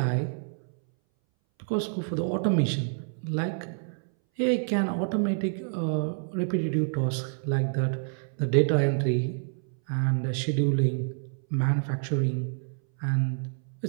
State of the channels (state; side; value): silent; left; 59 dB below the other